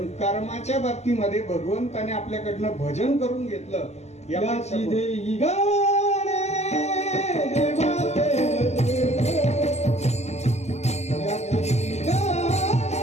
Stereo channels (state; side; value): late; right; 0.33 ms